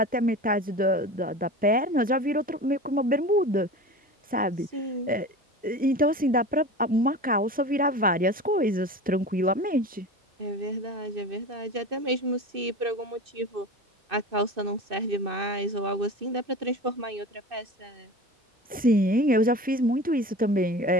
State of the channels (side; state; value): both; normal; correlation 0.33